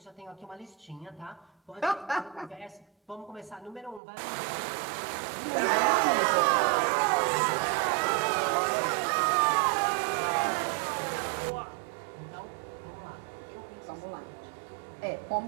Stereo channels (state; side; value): drops out; left; at 4.0 s